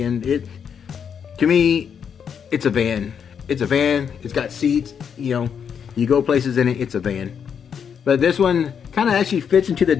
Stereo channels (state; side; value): quieter; right; 7.4 dB